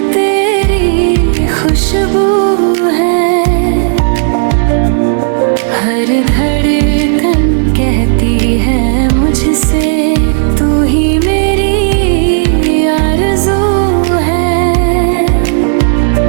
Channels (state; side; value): silent; left; digital silence